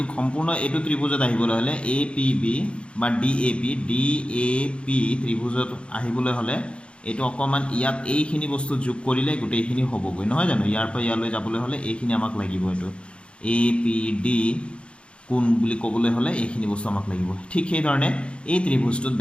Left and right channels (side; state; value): right; late; 0.058 ms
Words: সম্পূৰ্ণ এইটো ত্ৰিভুজত আহিবলৈ হলে APB বা DAP ত্ৰিভুজত আহিবলৈ হলে এইটো অকমান ইয়াত এইখিনি বস্তু যোগ কৰিলে গোটেইখিনি হ'বগৈ নহয় জানো ইয়াৰ পৰা ইয়ালৈ যাবলৈ হ'লে এইখিনি আমাক লাগিব এইটো এ পি ডি কোন বুলি ক'বলৈ হ'লে এইখিনি বস্তু আমাক লাগিব ঠিক সেই ধৰণে এই ত্ৰিভুজটোত